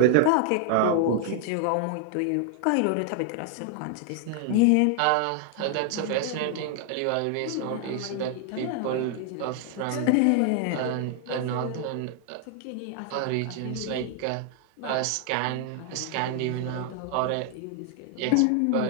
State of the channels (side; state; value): both; different; correlation 0.00